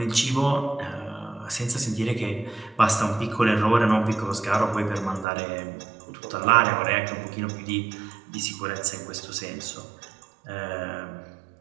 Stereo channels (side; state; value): left; drops out; at 5.2 s